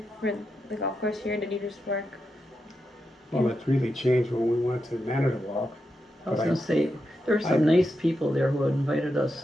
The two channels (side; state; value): both; normal; correlation 0.86